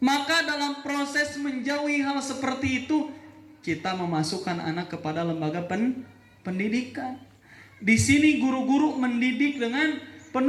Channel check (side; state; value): both; identical; correlation 1.00